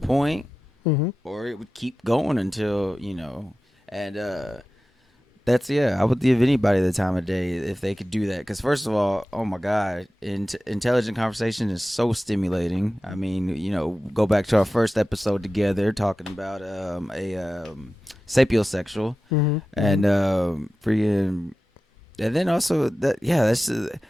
Mm-hmm. or it would keep going until, and that's, I would give anybody the time of day if they could do that. Because first of all, oh my God, intelligent conversation is so stimulating. I mean, go back to our first episode together talking about sapiosexual, Mm-hmm. and freaking, and then also that's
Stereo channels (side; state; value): both; normal; correlation 0.94